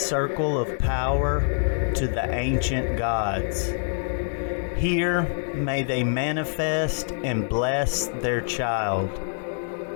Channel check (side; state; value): right; silent; 58 dB below the other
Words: circle of power to the ancient gods. Here may they manifest and bless their child.